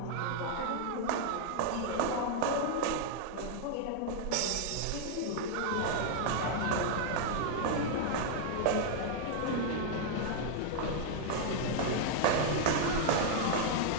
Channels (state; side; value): different; both; correlation -0.01